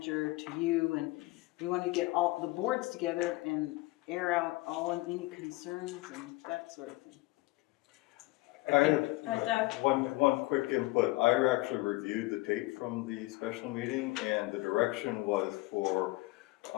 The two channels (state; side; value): quieter; right; 21.3 dB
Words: to you, and we want to get all the boards together and air out any concerns and that sort of thing. I Doug. have one quick input. I actually reviewed the tape from the special meeting, and the direction was for